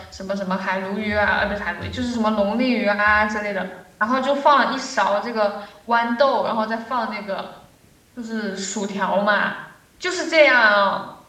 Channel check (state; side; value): identical; both; correlation 1.00